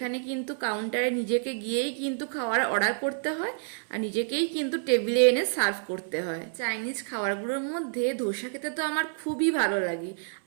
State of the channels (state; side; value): silent; left; 59 dB below the other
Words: কিন্তু কাউন্টারে নিজেকে গিয়েই কিন্তু খাওয়ার অর্ডার করতে হয় আর নিজেকেই কিন্তু টেবিলে এনে সার্ভ করতে হয়। চাইনিজ খাবারগুলোর মধ্যে ধোসা খেতে তো আমার খুবই ভালো লাগে।